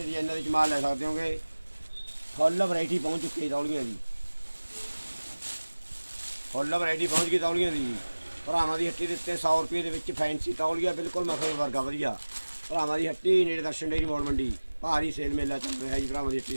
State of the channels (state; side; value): inverted; both; correlation -1.00